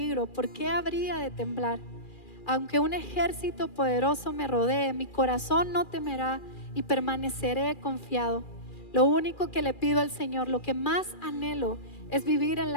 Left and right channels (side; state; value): right; late; 2.4 ms